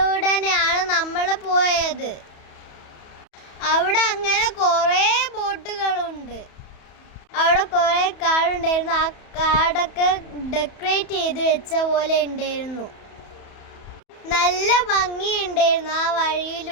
നമ്മൾ പോയത്. അവിടെ അങ്ങനെ കുറേ ബോട്ടുകളുണ്ട്. അവിടെ കുറേ കാടുണ്ടായിരുന്നു. ആ കാടൊക്കെ ഡെക്കറേറ്റ് ചെയ്ത് വെച്ച പോലെ ഉണ്ടായിരുന്നു. നല്ല ഭംഗിയുണ്ടായിരുന്നു ആ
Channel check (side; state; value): right; late; 31 ms